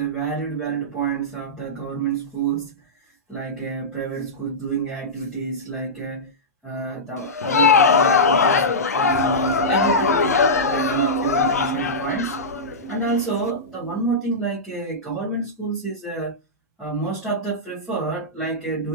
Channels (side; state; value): both; normal; correlation -0.14